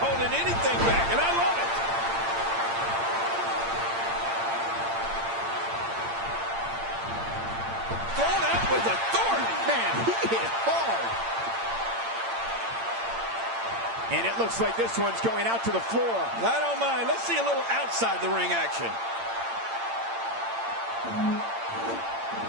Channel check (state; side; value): late; left; 8.8 ms